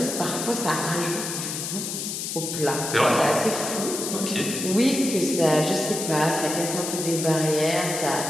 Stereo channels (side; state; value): left; noise; hiss, 4 dB below the sound